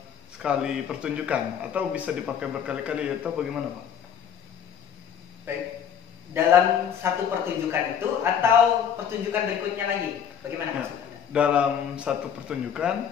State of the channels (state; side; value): quieter; right; 8.3 dB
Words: sekali pertunjukan atau bisa dipakai berkali-kali atau bagaimana Pak? Baik. Dalam satu pertunjukan itu atau pertunjukan berikutnya lagi? Bagaimana Ya, maksudnya? dalam satu pertunjukan